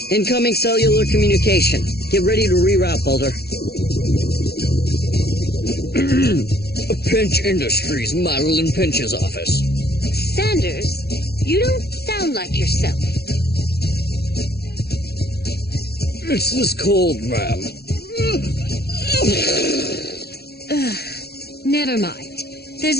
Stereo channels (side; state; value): right; late; 0.46 ms